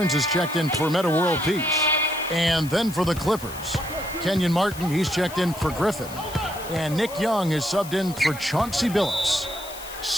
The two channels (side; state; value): left; noise; hiss, 15 dB below the sound